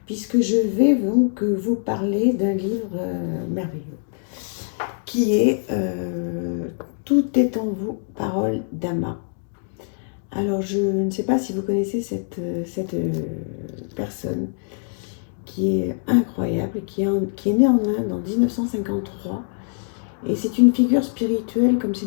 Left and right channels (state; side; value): silent; right; digital silence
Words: puisque je vais donc vous parler d'un livre merveilleux qui est Tout est en vous, parole d'Ama. Alors je ne sais pas si vous connaissez cette personne qui est incroyable, qui est née en Inde en 1953. Et c'est une figure spirituelle, comme c'est